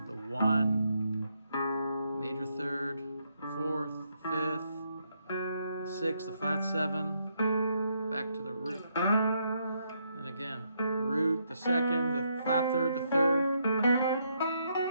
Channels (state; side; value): inverted; both; correlation -0.76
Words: The 1, major 3rd, the 4th, the 5th, the 6th, the flat 7, back to the root. And again, root, the second, the flat third, the third,